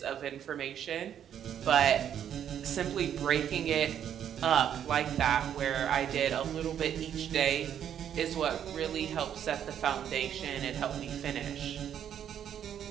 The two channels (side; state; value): left; quieter; 9.5 dB